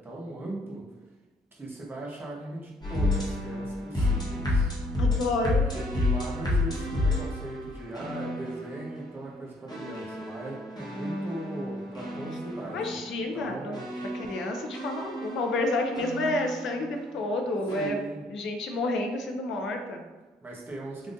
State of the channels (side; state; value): both; normal; correlation 0.63